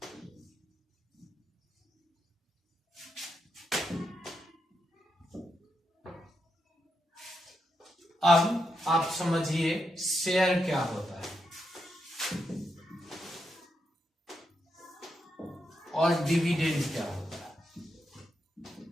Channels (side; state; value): both; normal; correlation 0.84